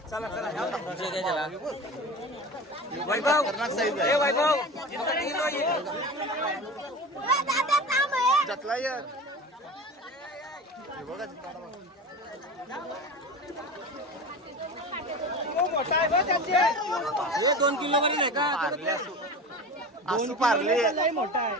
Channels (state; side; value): normal; both; correlation 0.31